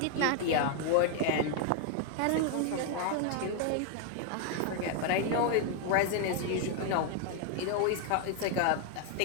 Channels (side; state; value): both; different; correlation 0.00